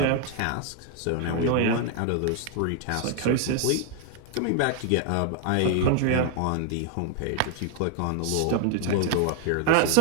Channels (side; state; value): both; different; correlation 0.01